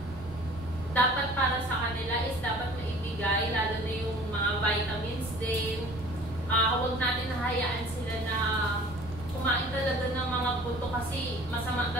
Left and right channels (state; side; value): noise; right; rumble, 14 dB below the sound